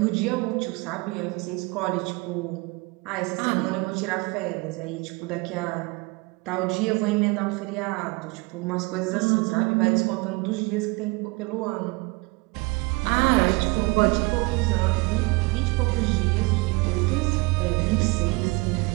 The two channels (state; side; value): quieter; left; 26.4 dB